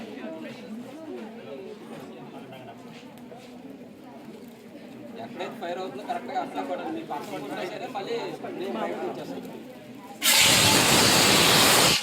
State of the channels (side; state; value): both; identical; correlation 1.00